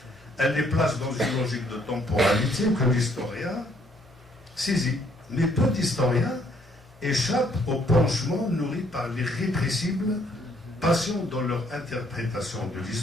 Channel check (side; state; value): both; normal; correlation 0.66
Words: Elle les place dans une logique de temporalité que l'historien saisit. Mais peu d'historiens échappent au penchement nourri par l'irrépressible passion dans leur interprétation de